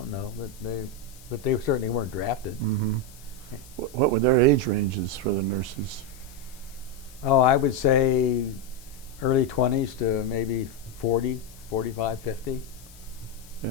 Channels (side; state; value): left; noise; hiss, 22 dB below the sound